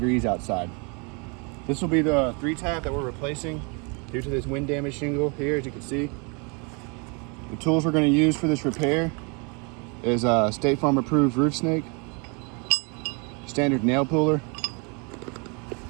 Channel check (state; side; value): quieter; left; 32.9 dB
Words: outside. This will be the 3-tap that we're replacing due to this wind damage shingle here, as you can see. The tools we're going to use for this repair is a State Farm approved roof snake, standard nail puller,